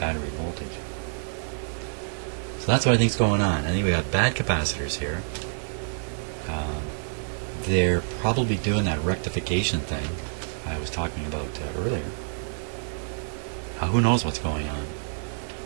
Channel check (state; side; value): silent; left; 60 dB below the other